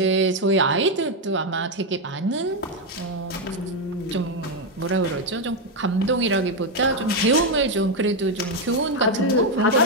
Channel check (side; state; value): both; normal; correlation 0.04